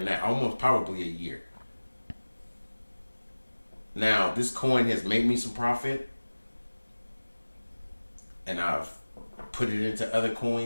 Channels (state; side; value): inverted; both; correlation -1.00